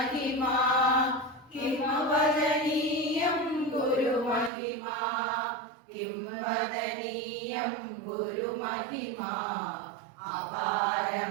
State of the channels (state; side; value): drops out; left; at 4.5 s